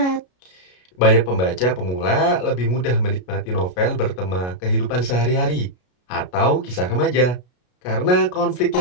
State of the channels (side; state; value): right; late; 33 ms